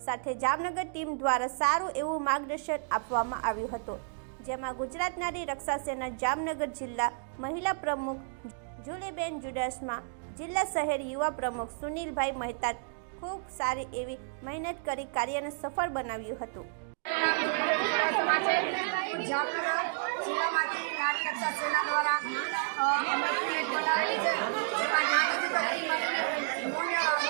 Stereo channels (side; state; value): left; silent; digital silence